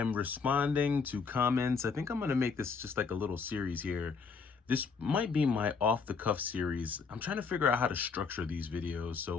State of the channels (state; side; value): quieter; right; 5.2 dB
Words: responding to comments. I think I'm gonna make this just like a little series here. This might be my off the cuff series. I'm trying to figure out how to structure these videos,